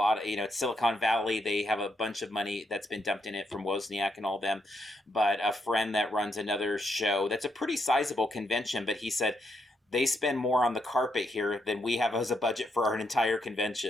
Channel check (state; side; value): normal; both; correlation 0.79